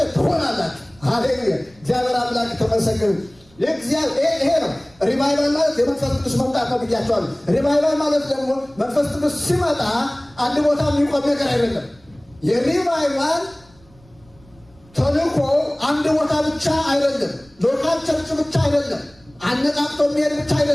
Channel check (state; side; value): noise; right; rumble, 28 dB below the sound